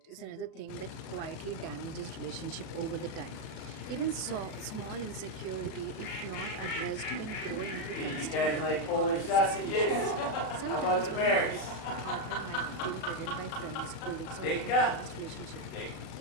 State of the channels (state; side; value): late; right; 37 ms